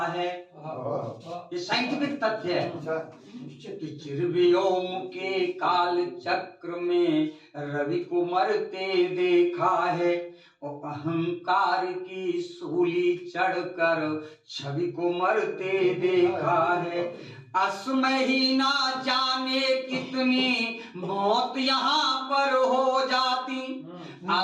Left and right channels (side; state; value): both; identical; correlation 1.00